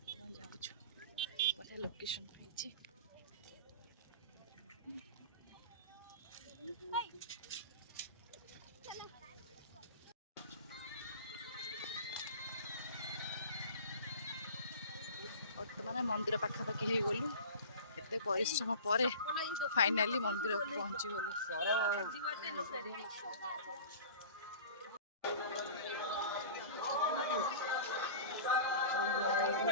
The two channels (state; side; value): inverted; both; correlation -0.38